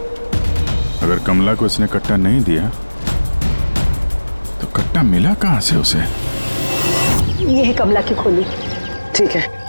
अगर कमला को इसने कट्टा नहीं दिया तो कट्टा मिला कहाँ से उसे? ये है कमला की खोली। ठीक है,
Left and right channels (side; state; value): both; inverted; correlation -1.00